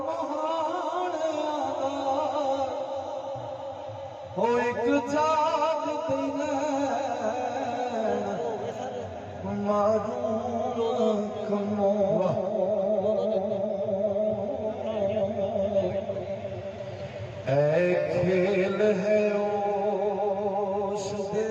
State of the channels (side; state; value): both; identical; correlation 1.00